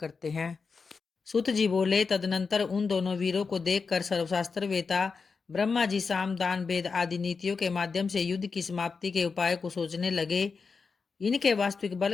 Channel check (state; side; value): quieter; right; 5.0 dB